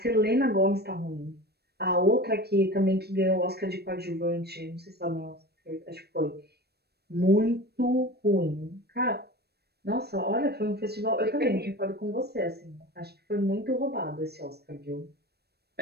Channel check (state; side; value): late; left; 0.47 ms